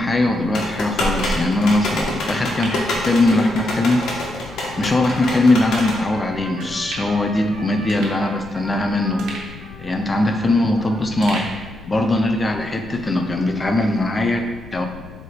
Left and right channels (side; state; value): left; noise; rumble, 17 dB below the sound